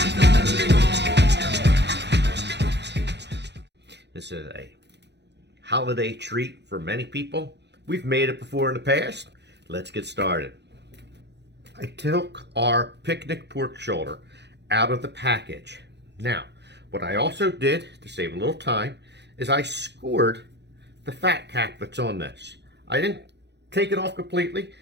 This is a holiday treat for many people. We've made it before in the past. Let's get started. I took our picnic pork shoulder out of the package. Now, what I also did to save a little time is I scored the fat cap that's on this. I didn't take it off completely.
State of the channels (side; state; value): left; late; 0.50 ms